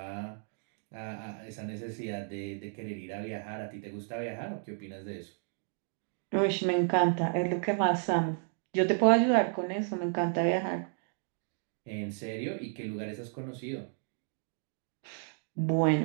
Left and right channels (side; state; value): left; silent; 56 dB below the other